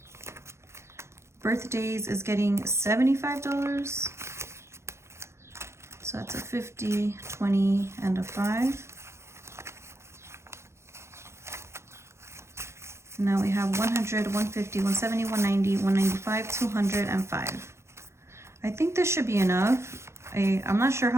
Birthdays is getting $75. So that's a 50, 20, and a 5. And now we have 100, 150, 170, 190, 195, 200, and 5. I think this should be enough. I'm not sure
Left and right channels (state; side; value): late; left; 0.13 ms